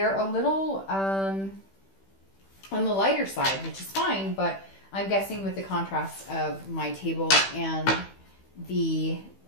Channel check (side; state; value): right; late; 15 ms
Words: a little on the lighter side, which is fine, but I'm guessing with the contrast of my table and the,